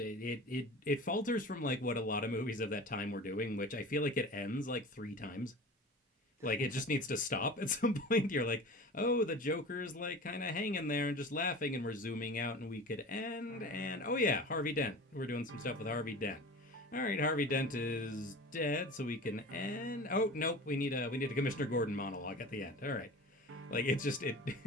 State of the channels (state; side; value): normal; both; correlation 0.36